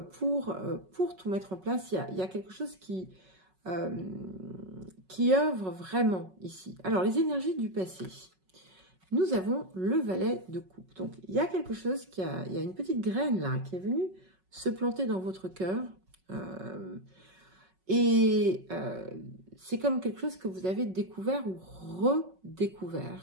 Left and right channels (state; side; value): late; left; 5.4 ms